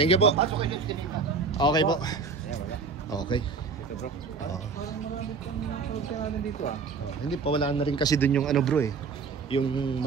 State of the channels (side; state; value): left; quieter; 4.8 dB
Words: you po. Okay po. Okay. Oh. Oh, hindi pa wala na rin kasi dun yung ano bro eh. Yung